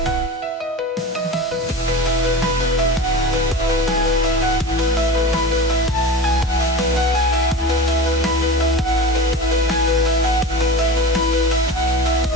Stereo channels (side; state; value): both; normal; correlation 0.31